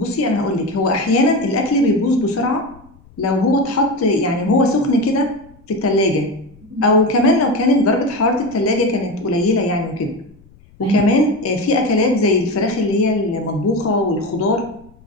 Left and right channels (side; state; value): left; noise; rumble, 27 dB below the sound